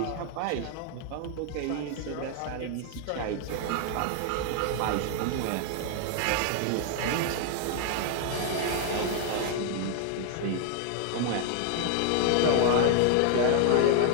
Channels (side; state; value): both; different; correlation 0.00